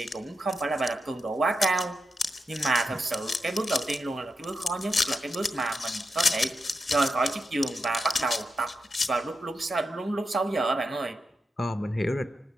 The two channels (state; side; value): normal; both; correlation 0.87